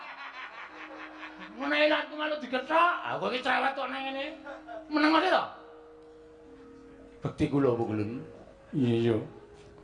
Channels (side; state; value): both; identical; correlation 1.00